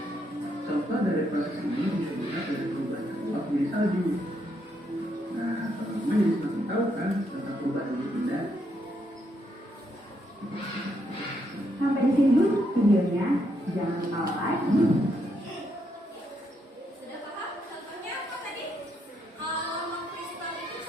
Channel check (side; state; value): both; normal; correlation 0.77